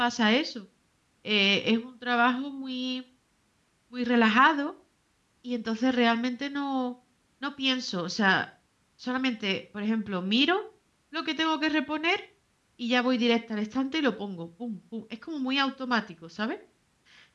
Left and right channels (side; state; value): both; identical; correlation 1.00